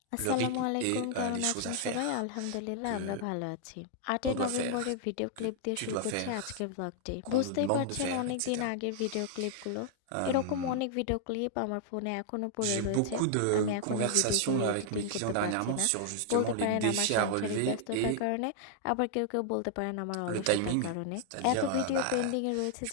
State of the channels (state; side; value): different; both; correlation -0.01